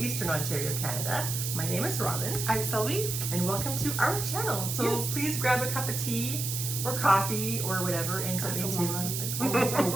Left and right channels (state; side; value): noise; right; hiss, 3 dB below the sound